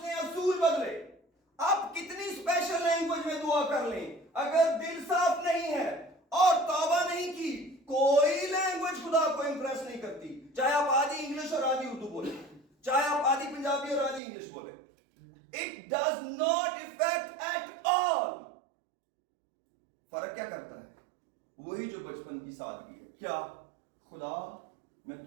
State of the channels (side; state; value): left; drops out; at 14.2 s